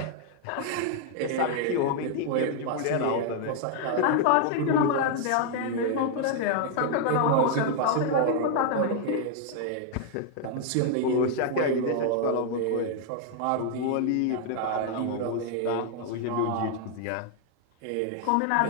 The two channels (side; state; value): both; different; correlation 0.00